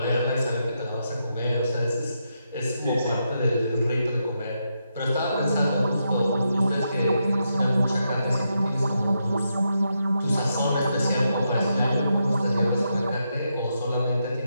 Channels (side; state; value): both; inverted; correlation -0.83